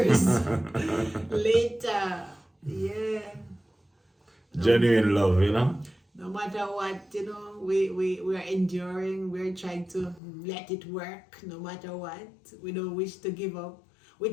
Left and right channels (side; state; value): right; drops out; at 10.2 s